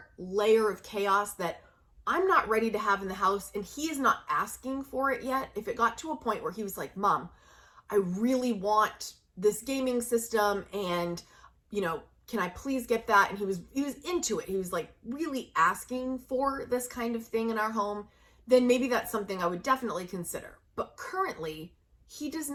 layer of chaos that I'm not ready to have in the house, and he is not asking for it yet. If it got to a point where he was like, Mom, I really want this gaming system and, can I please get that? And he was into it. He was like really asking for this kind of thing in our home. Then maybe that's something I would definitely consider. But currently, he does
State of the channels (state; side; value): identical; both; correlation 1.00